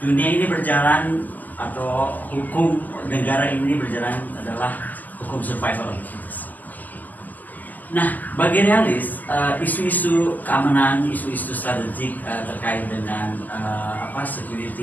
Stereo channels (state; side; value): late; right; 0.083 ms